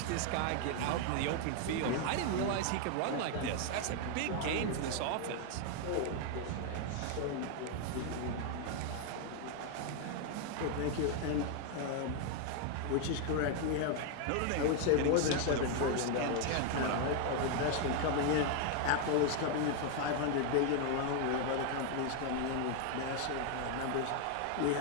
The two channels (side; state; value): both; different; correlation 0.00